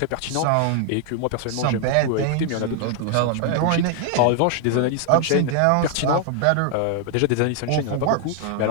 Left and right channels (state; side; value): different; both; correlation 0.00